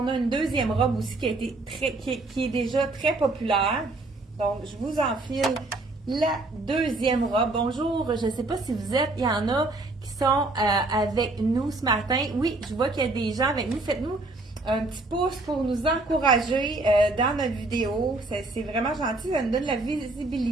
a une deuxième robe aussi qui est déjà très populaire. Donc, je vous enfile la deuxième robe. Bonjour, je ne sais pas si vous êtes, il y en a qui sont avec nous ce matin. Oui, je vois qu'il y a des gens avec nous. Faites-nous un petit pouce pour nous encourager dans notre vidéo. C'est vraiment gentil, ça nous donne la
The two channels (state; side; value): quieter; left; 3.0 dB